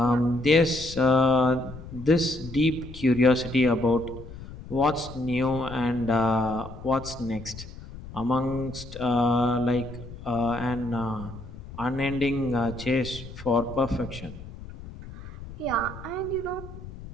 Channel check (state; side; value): noise; left; rumble, 14 dB below the sound